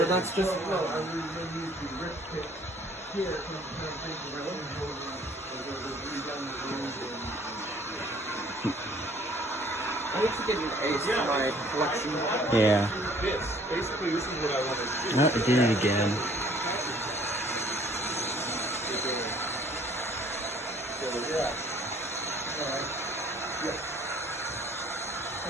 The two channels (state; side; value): normal; both; correlation 0.57